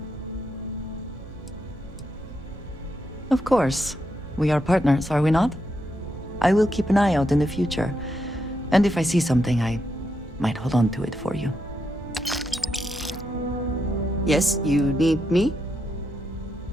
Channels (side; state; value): both; normal; correlation 0.82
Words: Of course. We are partners, are we not? I will keep an eye out in the future. And if I see something, I might hold on to it for you. Yes, you need me?